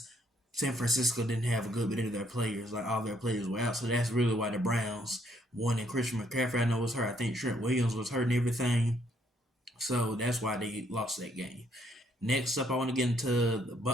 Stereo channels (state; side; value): normal; both; correlation 0.70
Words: San Francisco didn't have a good bit of their players. Like, all their players were out. So that's really why the Browns won. And Christian McCaffrey, I know, was hurt. I think Trent Williams was hurt and everything. So that's why they lost that game. Next up, I want to get into